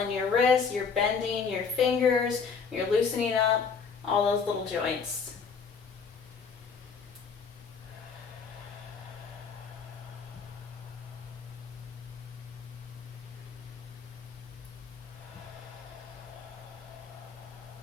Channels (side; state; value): right; quieter; 5.6 dB